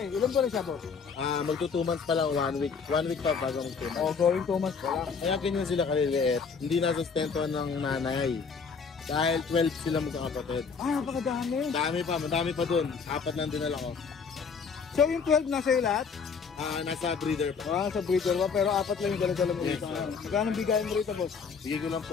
Ilan po rin siya, boss? Magto 2 months pa lang, 1 week. 1 week pa bago mag 2 months. O, going 2 months pa lang. Kaya ganyan sila kaliliit. Hindi nasustentuhan ng nanay. Dahil 12 sila magkakapatid. Ah, napakadami. Madami pa dun. 4 lang dinala ko. So, yung 12 nasa iyo lahat? Nasa breeder pa. Ah, sa breeder pa, pero 4 lang yung dala-dala mo rito. Magkano bigayan mo rito, boss? Bigay ko lang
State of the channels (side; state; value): right; quieter; 5.6 dB